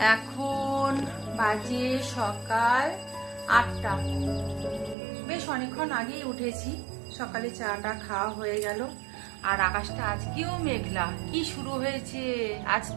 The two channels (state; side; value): drops out; left; at 5.0 s